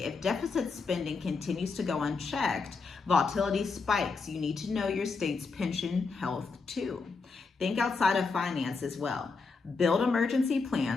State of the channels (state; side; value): quieter; right; 4.5 dB